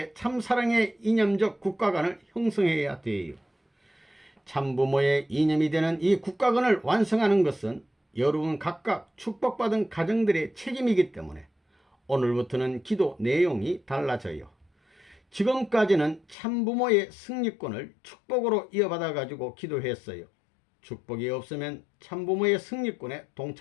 참사랑의 이념적 국가관을 형성해야 돼요. 참부모의 이념이 되는 이 국가관을 완성하는 것은 여러분 각각 축복받은 가정들의 책임이기 때문에 오늘부터는 기도 내용이 달라져요. 지금까지는 참부모의 승리권을 축복으로 이어받아 가지고 기도했어요. 축복이 없으면 참부모의 승리권에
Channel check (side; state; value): right; drops out; at 16.4 s